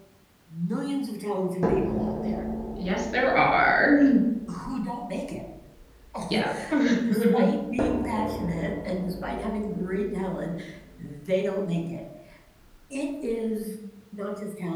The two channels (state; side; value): identical; both; correlation 1.00